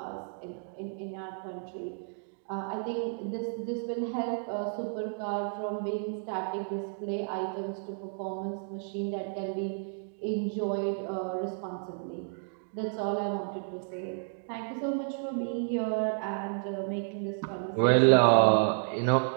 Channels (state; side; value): silent; left; digital silence